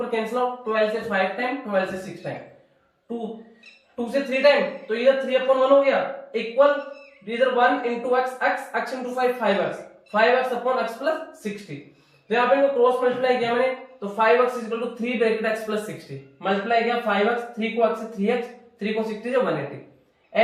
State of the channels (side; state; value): both; identical; correlation 1.00